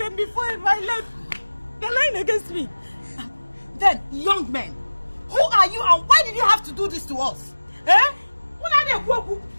before in my life. They're lying against me. Then, young men, who are you and why did you have to do this to us? Eh?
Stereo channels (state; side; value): inverted; both; correlation -1.00